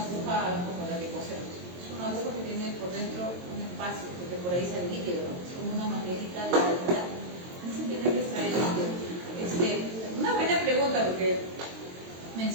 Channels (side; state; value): left; late; 22 ms